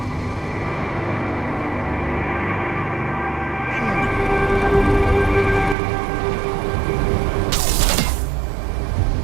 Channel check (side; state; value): left; drops out; at 5.8 s